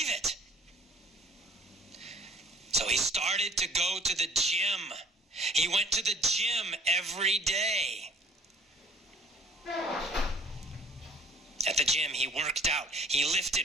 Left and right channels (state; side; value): normal; both; correlation 0.53